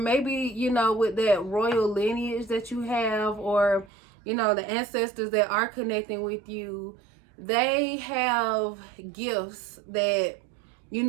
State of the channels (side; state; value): left; drops out; at 3.9 s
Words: you know, with that royal lineage that you have, or, you know, the ancestors that are connecting with you, they have gifts that, you